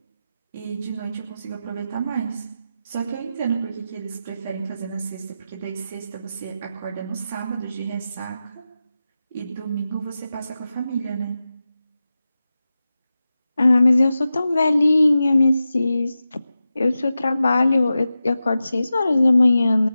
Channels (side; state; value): both; inverted; correlation -0.93